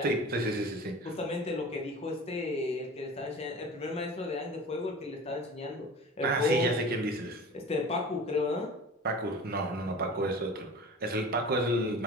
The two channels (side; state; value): both; normal; correlation 0.38